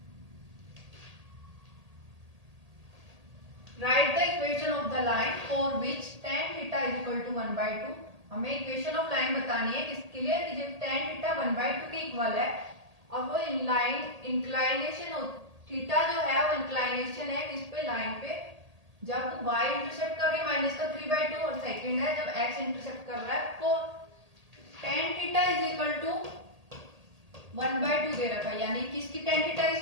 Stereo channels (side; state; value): left; late; 1.8 ms